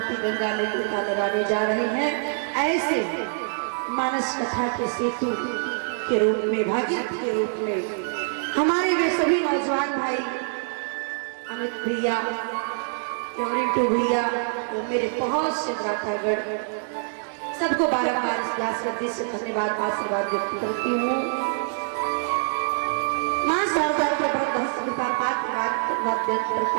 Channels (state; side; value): silent; left; digital silence